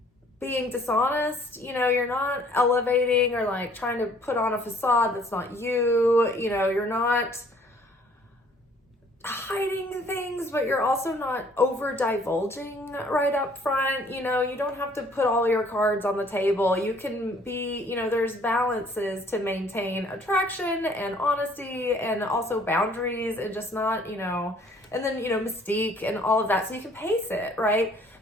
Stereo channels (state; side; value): normal; both; correlation 0.58